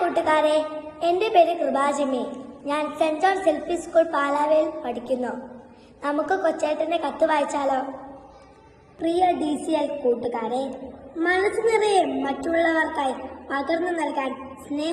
എൻ്റെ പേര് കൃപാജിമി. ഞാൻ സെന്റ് ജോൺസ് എൽ.പി. സ്കൂൾ പാലാവയിൽ പഠിക്കുന്നു. നമുക്ക് കൊച്ചേട്ടൻ്റെ കത്ത് വായിച്ചാലോ? പ്രിയ DCL കൂട്ടുകാരെ, മനസ്സ് നിറയെ മറ്റുള്ളവർക്കായി പകർന്നു നൽകാൻ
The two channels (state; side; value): identical; both; correlation 1.00